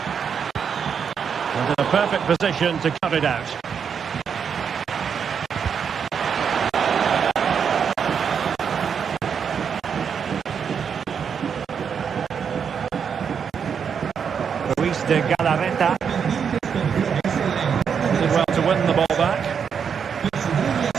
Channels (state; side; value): quieter; left; 7.0 dB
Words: And in a perfect position to cut it out. Ruiz de Galarreta. Did well to win the ball back.